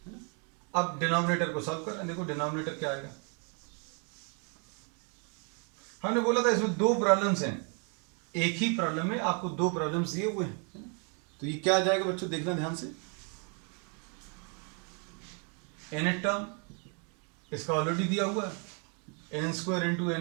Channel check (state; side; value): quieter; left; 37.9 dB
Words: अब डिनोमिनेटर को सॉल्व कर, देखो डिनोमिनेटर क्या आएगा। हमने बोला था इसमें दो प्रॉब्लम्स हैं, एक ही प्रॉब्लम में आपको दो प्रॉब्लम्स दिए हुए हैं। तो ये क्या आ जाएगा बच्चों, देखना ध्यान से। nth टर्म इसका ऑलरेडी दिया हुआ है n square into